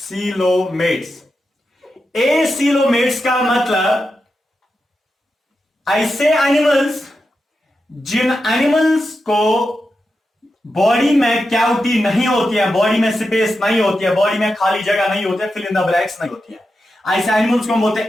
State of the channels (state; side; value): normal; both; correlation 0.89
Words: एसीलोमेट्स का मतलब ऐसे एनिमल्स जिन एनिमल्स को बॉडी में कैविटी नहीं होती है, बॉडी में स्पेस नहीं होती है, बॉडी में खाली जगह नहीं होती है, फिल इन द ब्लैंक्स नहीं होती है, ऐसे एनिमल्स को हम बोलते हैं